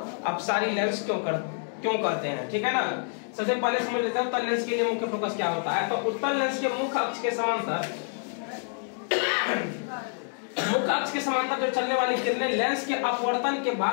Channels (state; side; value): silent; right; 60 dB below the other